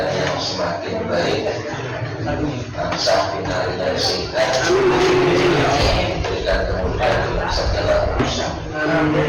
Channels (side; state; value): both; identical; correlation 1.00